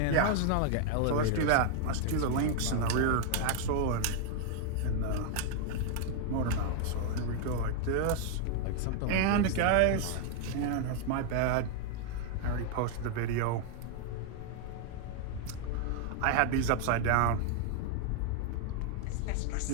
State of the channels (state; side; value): different; both; correlation 0.00